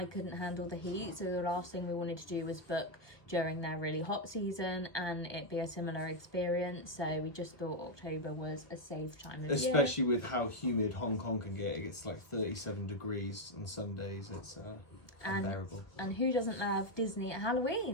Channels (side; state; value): right; late; 1.2 ms